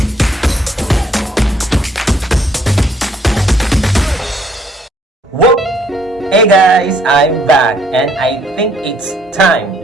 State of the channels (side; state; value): both; normal; correlation 0.65